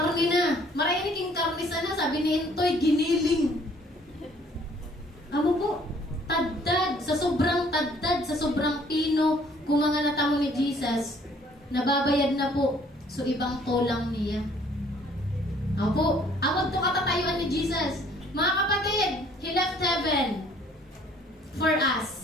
na. Marami king karne sana, sabi ni Intoy, giniling. Amo po, tadtad, sa sobrang pino, kung mga natamo ni Jesus, nababayad na po, so ibang tolang niya. Amo po, amod to katatayuan ni Jesus. Mga kapatid, He left heaven for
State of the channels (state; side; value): normal; both; correlation 0.59